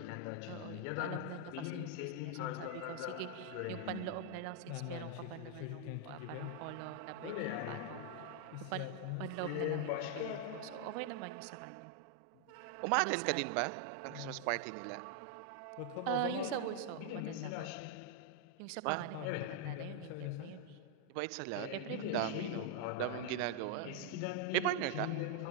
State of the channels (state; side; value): different; both; correlation 0.00